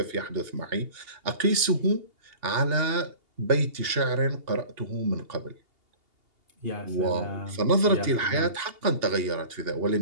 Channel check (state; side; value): late; left; 2.8 ms